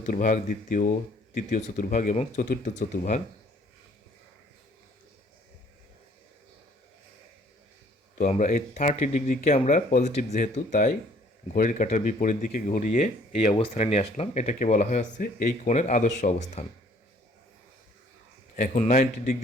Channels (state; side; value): normal; both; correlation 0.59